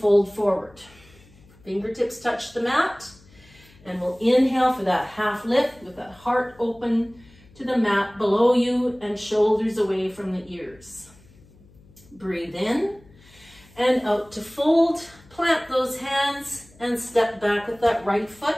forward. Fingertips touch the mat. And we'll inhale for that half lift with that heart open to the mat below you and shoulders away from the ears. Breathe in and out to fold. Plant those hands and step back with that right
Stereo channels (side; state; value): left; noise; hum, 26 dB below the sound